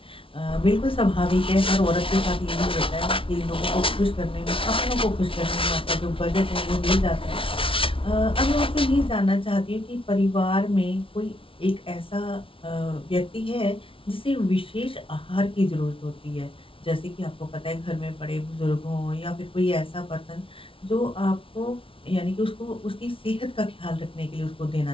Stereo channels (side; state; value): right; late; 0.26 ms